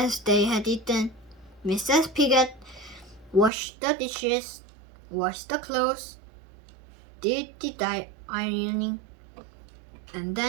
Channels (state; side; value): drops out; left; at 3.5 s